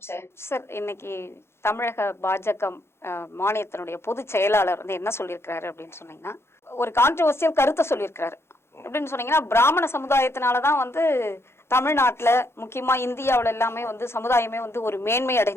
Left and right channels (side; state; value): right; late; 0.12 ms